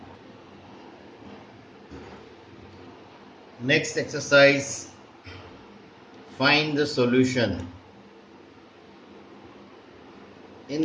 Next exercise, find the solution.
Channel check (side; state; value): both; identical; correlation 1.00